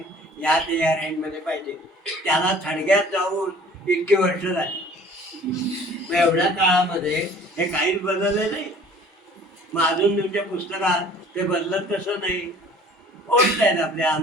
या रेंजमध्ये पाहिजे, त्याला थडग्यात जाऊन इतकी वर्ष झाली. मग एवढ्या काळामध्ये हे काहीच बदलले नाही. मग अजून तुमच्या पुस्तकात ते बदलत कसं नाही, ओढत आहेत आपल्या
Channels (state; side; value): normal; both; correlation 0.50